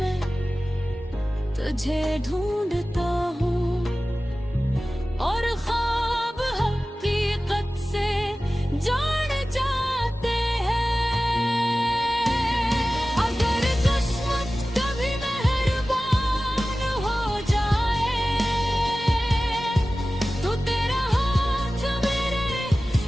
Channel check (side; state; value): both; normal; correlation 0.96